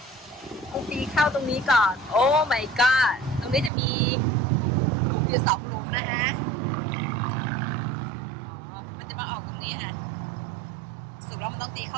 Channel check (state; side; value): drops out; left; at 3.7 s